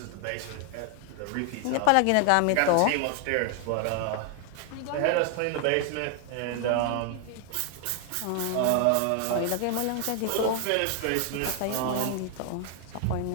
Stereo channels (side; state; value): both; different; correlation 0.00